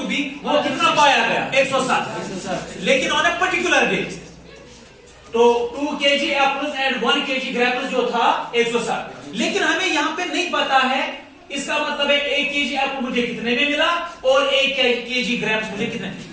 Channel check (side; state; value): both; identical; correlation 1.00